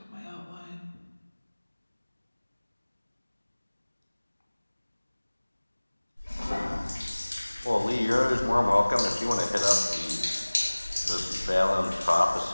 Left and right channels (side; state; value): both; inverted; correlation -1.00